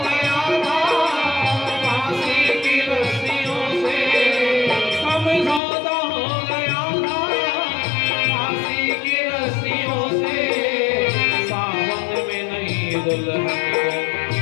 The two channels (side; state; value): right; drops out; at 5.6 s